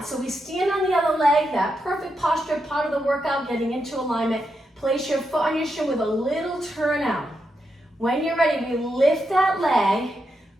So we stand on the other leg, that perfect posture, part of the workout, getting into alignment. Place your foot on your shin with a little turn out. When you're ready, we lift that leg,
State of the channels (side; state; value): both; normal; correlation 0.84